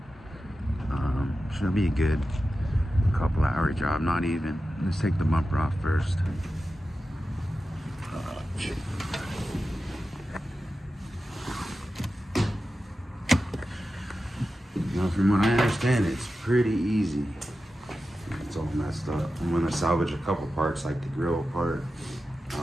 Should be a good couple hour job, not even. Let's take the bumper off first. Now, from what I understand, it's pretty easy. It's all messed up. I'm gonna salvage a couple parts, like the grill part,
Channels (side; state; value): both; normal; correlation 0.92